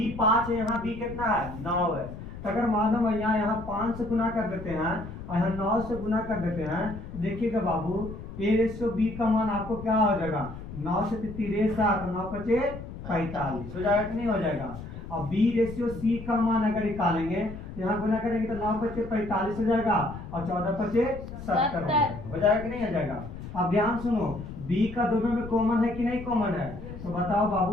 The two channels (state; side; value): noise; left; rumble, 11 dB below the sound